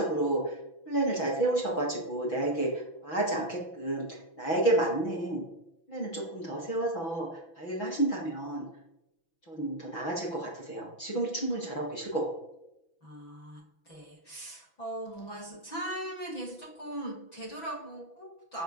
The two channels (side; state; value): right; late; 6.0 ms